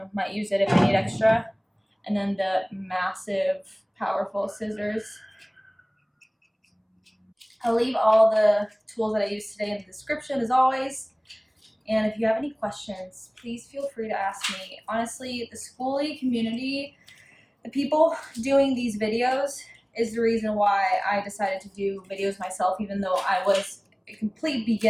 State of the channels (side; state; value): both; identical; correlation 1.00